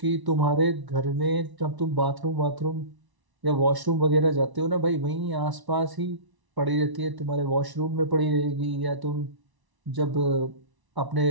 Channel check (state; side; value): late; left; 1.0 ms